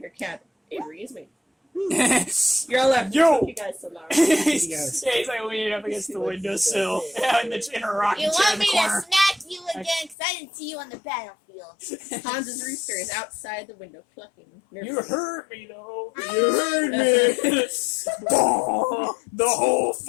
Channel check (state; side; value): drops out; right; at 10.2 s